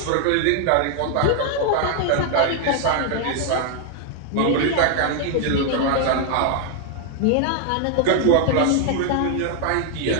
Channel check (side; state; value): both; different; correlation 0.01